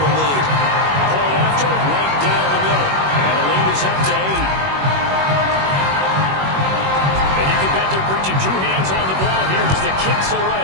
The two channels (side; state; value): left; late; 21 ms